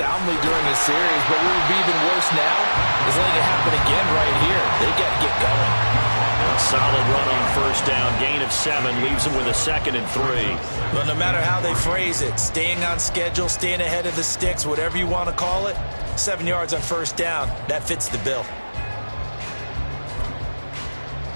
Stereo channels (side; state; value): both; inverted; correlation -1.00